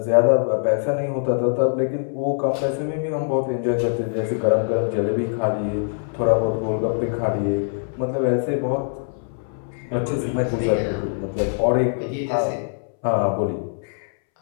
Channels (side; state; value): right; silent; 64 dB below the other